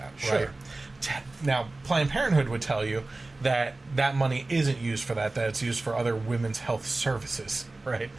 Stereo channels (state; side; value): quieter; left; 3.1 dB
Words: Right? Now, Planned Parenthood would tell you that that money isn't used for that it's used for other women's health services, right?